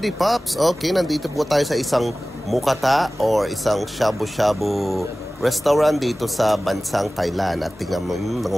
Pops? Okay, nandito po tayo sa isang mukata or isang shabu-shabu restaurant dito sa bansang Thailand. At tingnan mo,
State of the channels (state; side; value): normal; both; correlation 0.97